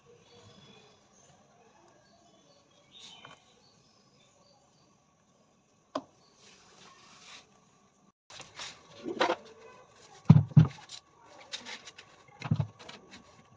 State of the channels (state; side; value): identical; both; correlation 1.00